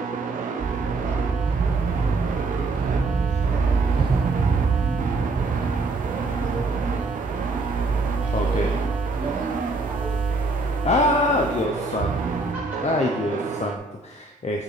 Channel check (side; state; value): left; quieter; 3.1 dB